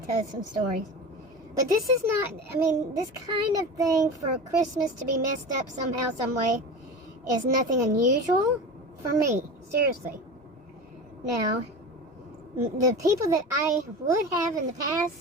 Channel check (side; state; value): both; normal; correlation 0.29